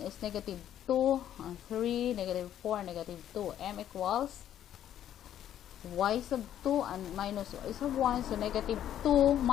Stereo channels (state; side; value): quieter; right; 10.9 dB